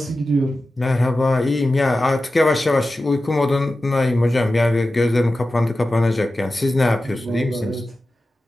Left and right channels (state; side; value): normal; both; correlation 0.94